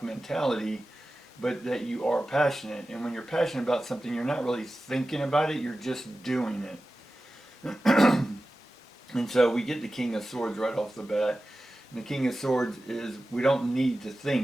mentality, but that you are passionate. And when you're passionate about something, you're not really thinking about it, you're just doing it. And so we get the King of Swords right off the bat. And the King of Swords is, we don't need to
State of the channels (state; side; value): normal; both; correlation 0.95